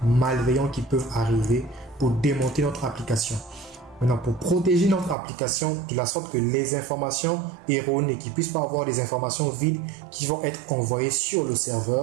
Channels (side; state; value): left; drops out; at 5.2 s